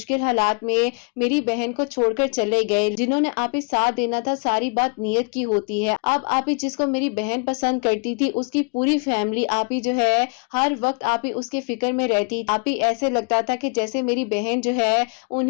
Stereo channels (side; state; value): right; quieter; 34.9 dB